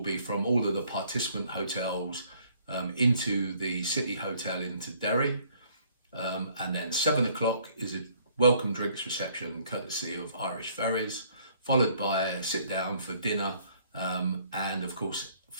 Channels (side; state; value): both; inverted; correlation -0.62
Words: from all of the participant hotels into the City Hotel into Derry, and then 7 o'clock is a welcome drinks reception courtesy of Irish Ferries, followed by a sit down for dinner, and of course